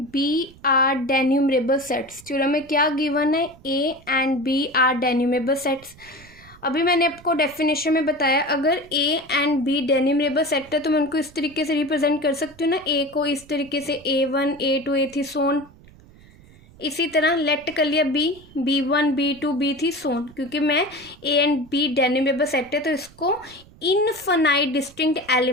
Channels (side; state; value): right; noise; rumble, 24 dB below the sound